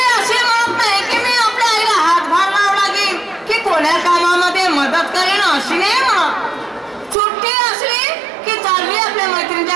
असे म्हणत नाही की मी आपल्या आईला हातभार लावला की कोण्या कामामध्ये मदत करेन अशी नाही म्हणत. सुट्टी असली की चालली आपल्या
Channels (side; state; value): left; drops out; at 7.2 s